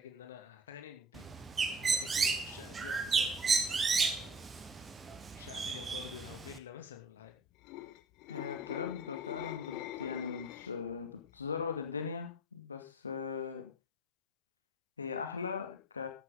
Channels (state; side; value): normal; both; correlation 0.45